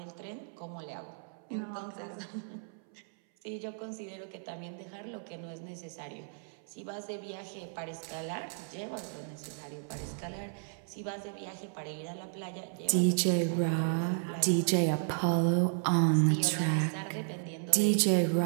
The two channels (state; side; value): silent; left; 55 dB below the other